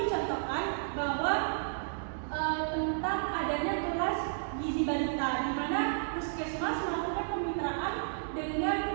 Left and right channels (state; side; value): silent; left; digital silence